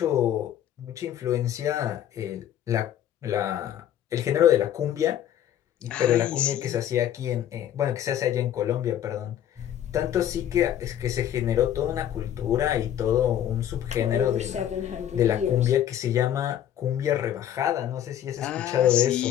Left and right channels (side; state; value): right; quieter; 10.8 dB